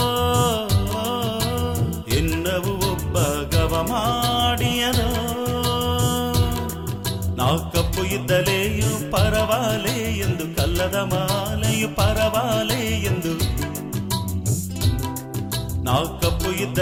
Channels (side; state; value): both; identical; correlation 1.00